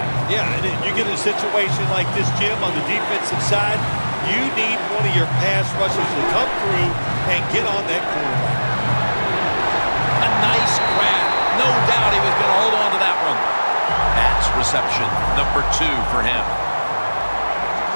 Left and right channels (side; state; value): both; inverted; correlation -1.00